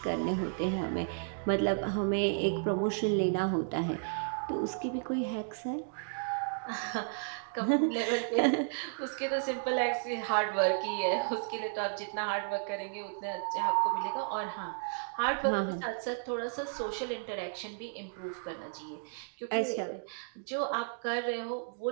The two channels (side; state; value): left; silent; digital silence